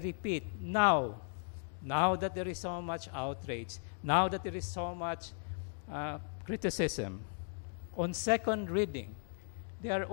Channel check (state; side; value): silent; right; digital silence